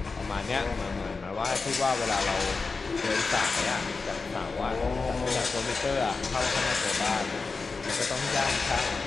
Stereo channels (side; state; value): right; quieter; 4.3 dB